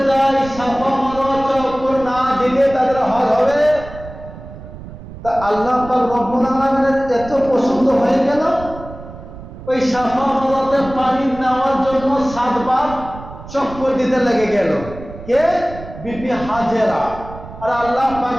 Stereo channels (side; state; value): right; noise; rumble, 14 dB below the sound